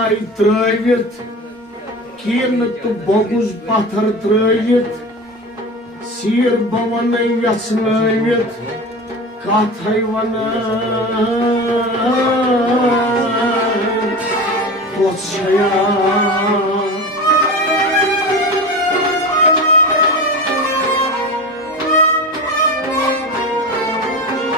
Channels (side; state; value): both; normal; correlation 0.30